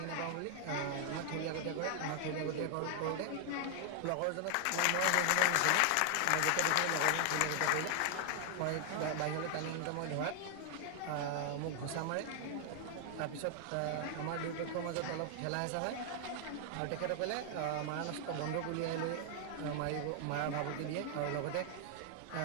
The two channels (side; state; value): both; different; correlation 0.00